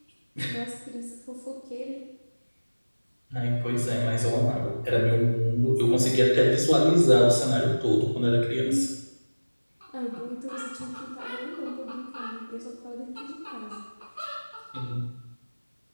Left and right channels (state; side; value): inverted; both; correlation -1.00